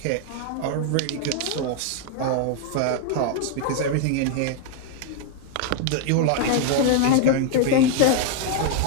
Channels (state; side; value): different; both; correlation 0.00